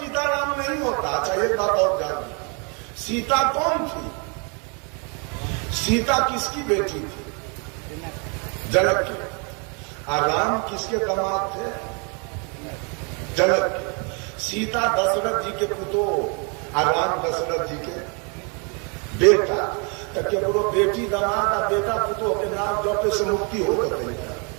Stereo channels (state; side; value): quieter; left; 34.8 dB